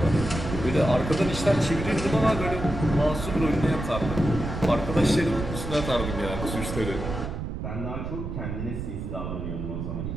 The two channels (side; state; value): right; noise; rumble, 5 dB below the sound